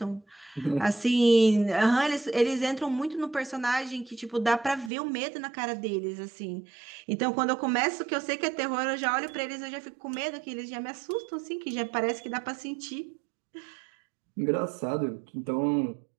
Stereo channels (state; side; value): drops out; left; at 4.9 s